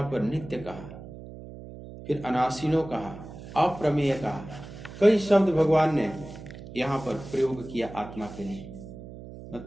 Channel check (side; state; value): right; noise; hum, 14 dB below the sound